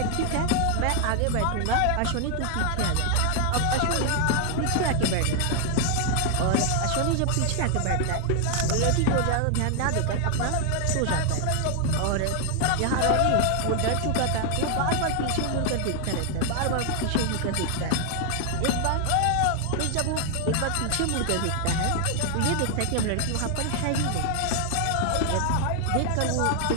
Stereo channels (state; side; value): different; both; correlation 0.00